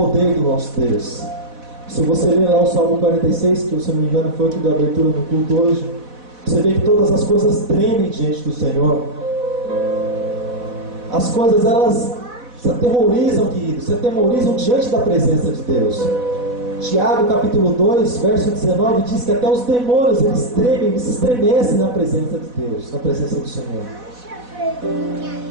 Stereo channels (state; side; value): late; left; 4.1 ms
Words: do nosso Deus. Se você ler lá o Salmo 46, que se eu não me engano foi o que deu abertura no culto hoje, você vê que todas as coisas tremem diante do Senhor. As coisas, elas se aterrorizam, queridos, se aterrorizam diante da presença de Deus. Tiago capítulo 2, verso 19, diz que até os demônios, eles tremem, eles se estremecem na presença de Deus, na presença do Senhor.